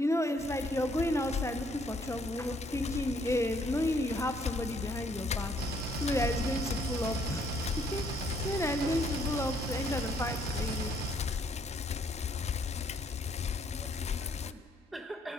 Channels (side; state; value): both; normal; correlation 0.66